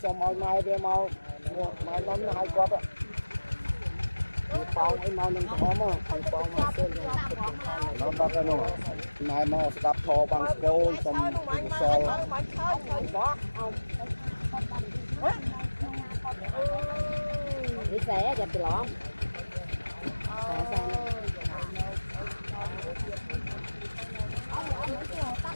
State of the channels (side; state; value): both; inverted; correlation -1.00